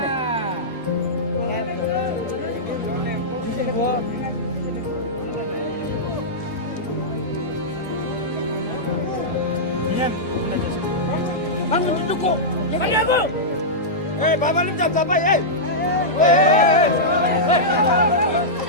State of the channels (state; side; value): normal; both; correlation -0.11